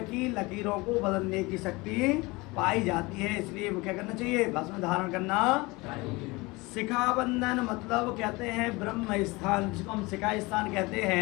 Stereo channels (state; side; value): quieter; right; 23.6 dB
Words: की लकीरों को बदलने की शक्ति पाई जाती है, इसलिए क्या करना चाहिए? भस्म धारण करना। शिखा बंधन मतलब कहते हैं ब्रह्म स्थान, जिसको हम शिखा स्थान कहते